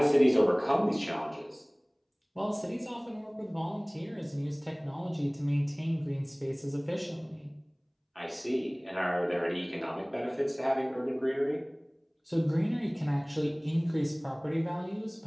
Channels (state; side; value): identical; both; correlation 1.00